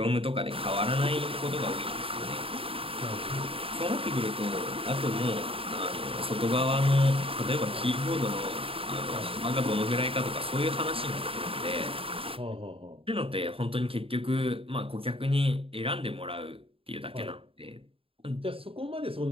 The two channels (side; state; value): left; late; 0.27 ms